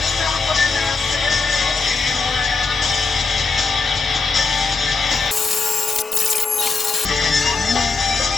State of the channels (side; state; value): right; quieter; 4.4 dB